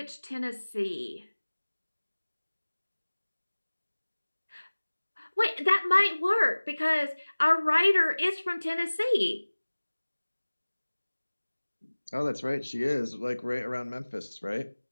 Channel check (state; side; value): inverted; both; correlation -1.00